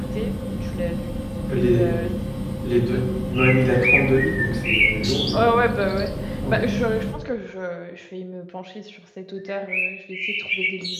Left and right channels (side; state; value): both; identical; correlation 1.00